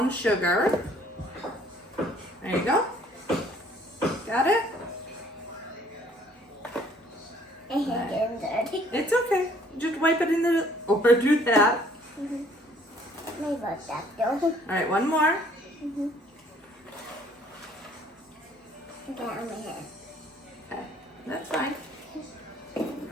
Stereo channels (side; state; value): both; normal; correlation 0.60